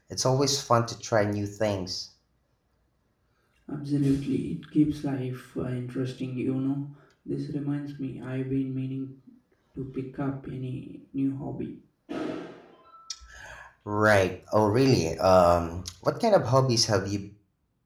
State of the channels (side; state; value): both; identical; correlation 1.00